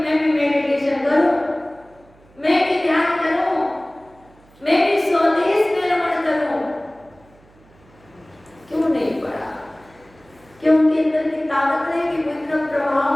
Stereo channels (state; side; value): noise; right; hum, 29 dB below the sound